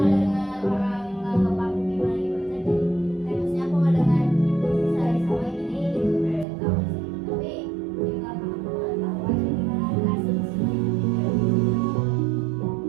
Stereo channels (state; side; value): drops out; left; at 6.5 s